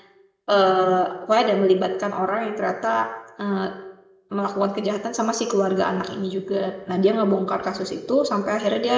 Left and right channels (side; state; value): both; identical; correlation 1.00